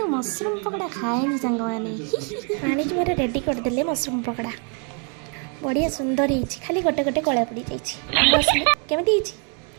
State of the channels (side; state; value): left; quieter; 39.3 dB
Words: मशरूम पकड़ा खाएनी सांग मैंने भाणीजी मोर रेडी करदे मशरूम पकड़ा बढ़िया सुंदर है खाली गोटे गोटे कला पड़ जाइए केमी